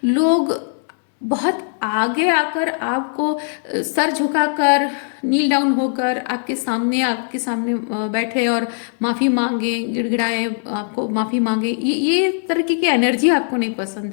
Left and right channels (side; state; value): right; silent; digital silence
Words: लोग बहुत आगे आकर आपको सर झुकाकर, नील डाउन होकर आपके सामने बैठे और माफ़ी मांगे, गिड़गिड़ाए, आपको माफ़ी मांगे। ये तरह की एनर्जी आपको नहीं